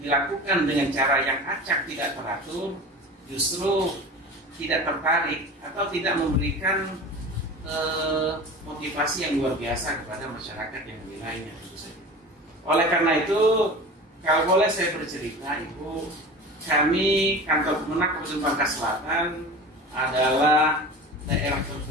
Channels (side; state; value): both; normal; correlation 0.35